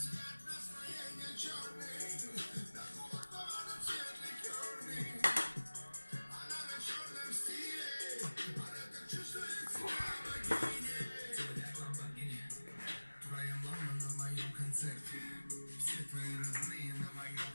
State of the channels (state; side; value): inverted; both; correlation -1.00